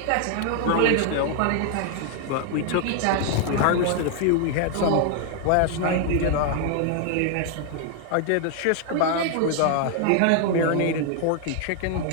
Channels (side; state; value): both; different; correlation 0.00